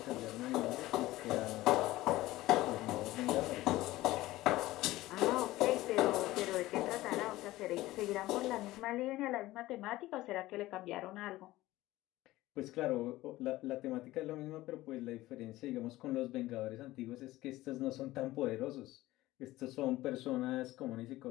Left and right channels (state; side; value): quieter; right; 17.3 dB